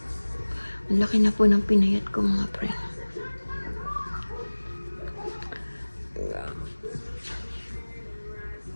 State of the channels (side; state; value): both; inverted; correlation -1.00